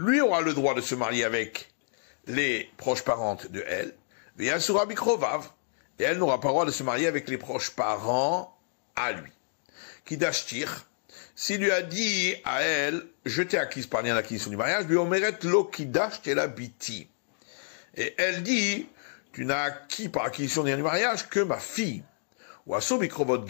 aura le droit de se marier avec les proches parentes de elle, et elle n'aura pas le droit de se marier avec les proches parents à lui. Kidashtir, s'il lui a dit à elle, je t'ai acquise par lien d'acquisition du mariage, et elle dit, tu n'as acquis par acquisition du mariage que ma fille. Ou Asobikrovot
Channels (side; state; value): right; silent; digital silence